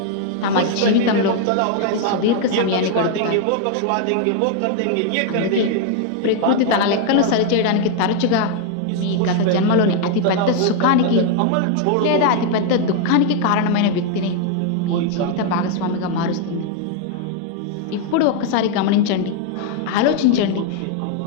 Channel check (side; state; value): both; different; correlation 0.00